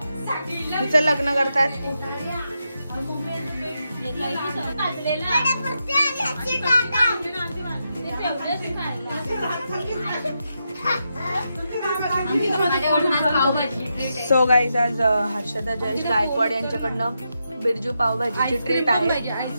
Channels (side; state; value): both; inverted; correlation -0.85